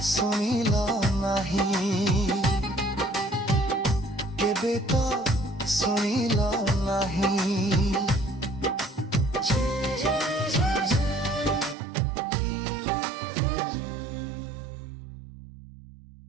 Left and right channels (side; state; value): left; drops out; at 11.8 s